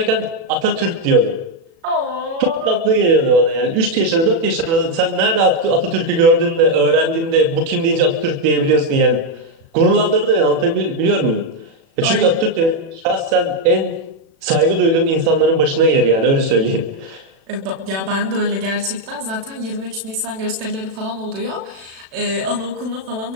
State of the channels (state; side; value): late; left; 36 ms